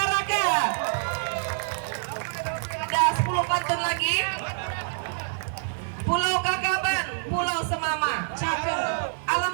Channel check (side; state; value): left; silent; 59 dB below the other